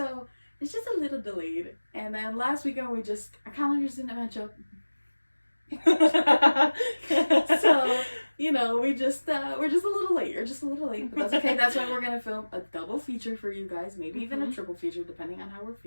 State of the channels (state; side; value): inverted; both; correlation -1.00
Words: it's just a little delayed. And then last weekend our calendars didn't match up. So, we're just a little late. You're just a little late, but that's okay. That's why we're gonna film a double feature for you guys, maybe even a triple feature, depending on how we're